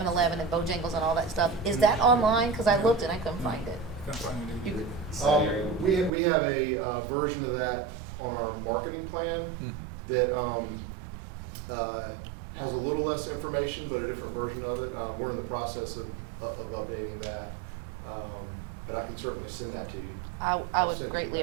and Bojangles and all that stuff? Is that online? Because I looked and I couldn't find it. Can't find it either. We have a version of that on our marketing plan that has a little less information, but a different version of it. We're in the process of updating that, but I can certainly send that to you. I would greatly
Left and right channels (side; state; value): left; drops out; at 6.1 s